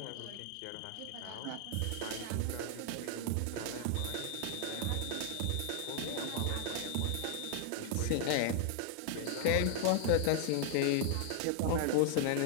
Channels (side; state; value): both; different; correlation 0.00